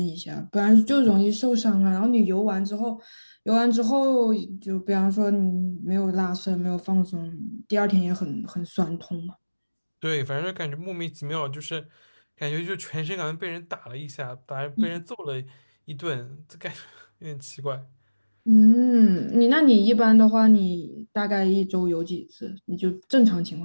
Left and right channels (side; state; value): both; inverted; correlation -1.00